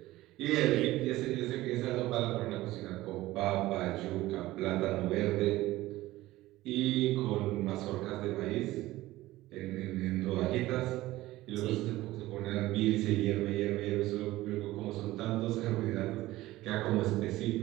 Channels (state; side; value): quieter; left; 17.2 dB